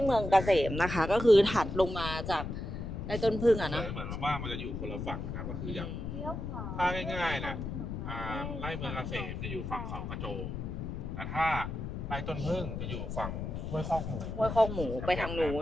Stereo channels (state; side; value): noise; left; rumble, 5 dB below the sound